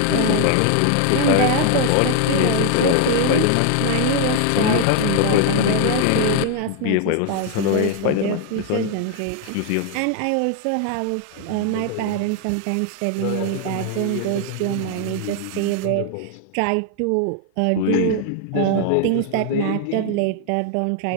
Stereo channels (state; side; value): different; both; correlation 0.00